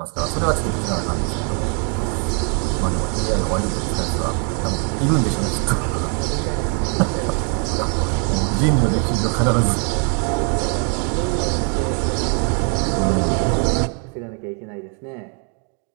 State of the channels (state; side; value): quieter; left; 39.3 dB